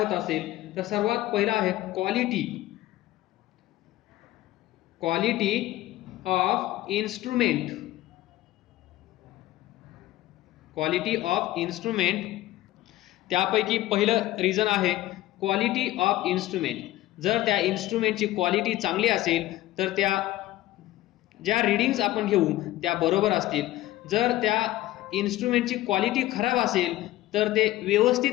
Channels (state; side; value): quieter; right; 15.9 dB